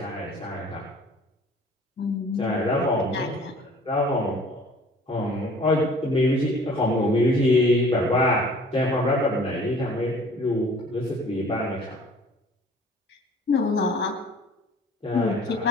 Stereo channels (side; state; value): both; normal; correlation 0.51